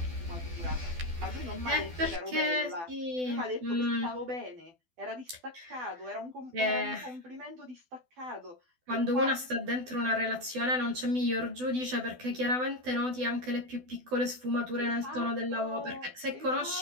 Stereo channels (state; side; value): late; left; 12 ms